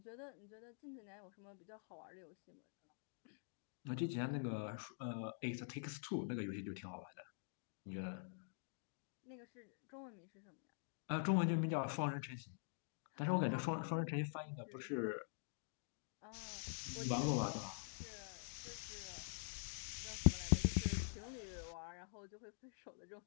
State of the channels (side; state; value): right; silent; digital silence